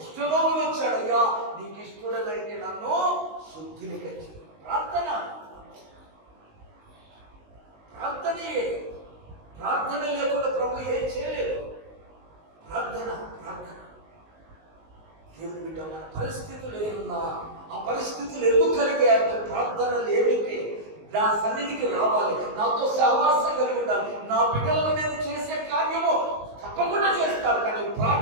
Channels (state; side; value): late; left; 19 ms